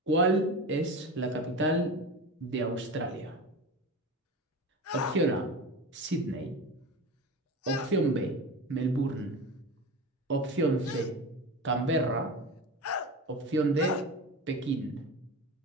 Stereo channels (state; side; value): normal; both; correlation 0.28